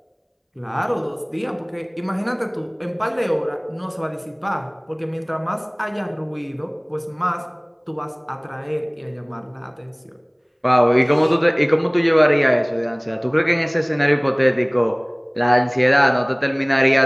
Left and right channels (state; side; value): identical; both; correlation 1.00